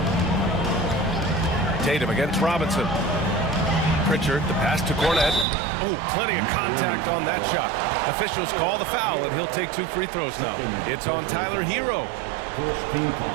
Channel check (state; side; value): drops out; left; at 5.5 s